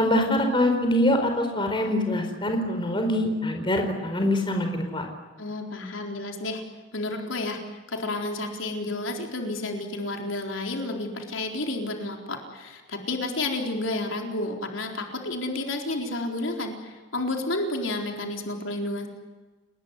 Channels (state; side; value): normal; both; correlation 0.37